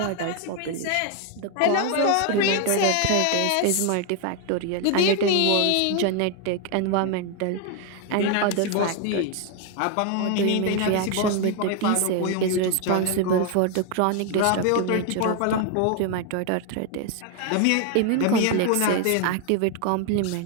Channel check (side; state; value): both; different; correlation 0.01